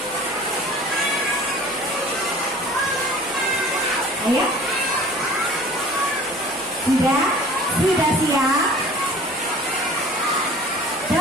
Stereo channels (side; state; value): left; noise; hum, 28 dB below the sound